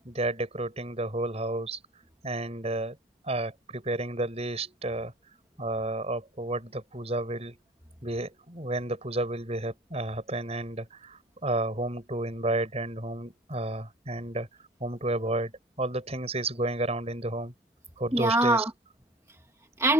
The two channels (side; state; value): both; normal; correlation 0.39